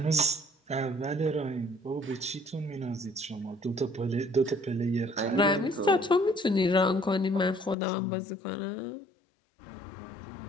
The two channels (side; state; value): right; drops out; at 7.8 s